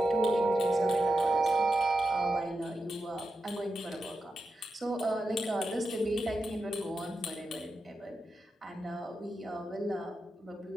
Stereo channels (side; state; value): both; normal; correlation 0.88